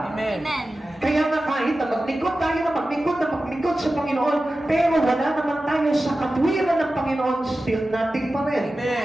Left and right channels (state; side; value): normal; both; correlation 0.94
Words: Amen. Kaya nga kahit na maglingkod tayo na maglingkod sa Panginoon, pero wala naman tayo sa katwiran ng Panginoon, still nothing pa rin. Amen.